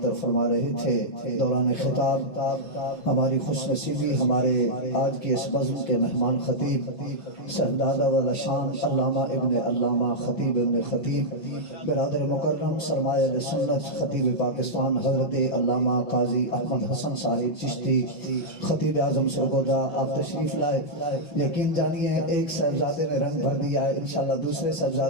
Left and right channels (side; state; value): right; late; 5.8 ms